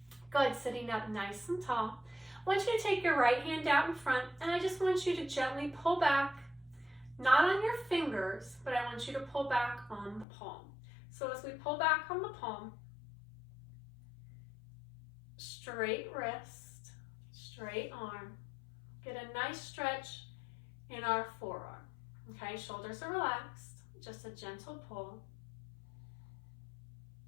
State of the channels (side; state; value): right; drops out; at 10.2 s